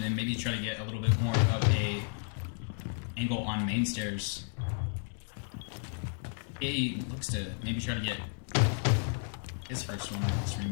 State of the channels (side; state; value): right; silent; 56 dB below the other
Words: and maybe try to get a little bit more of a angle on main stairs. He looks to maybe try to get his first one in this